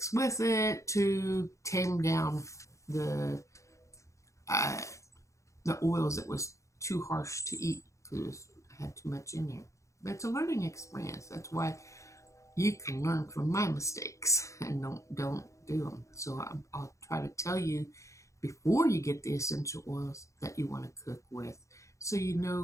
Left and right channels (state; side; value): late; right; 0.15 ms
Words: with it to tame down the oils that was too harsh to eat, because I had too much in there. But it's a learning experience. That's why you can learn from my mistakes and don't do them. So I'll try to tell you before you get the essential oils that you want to cook with, so you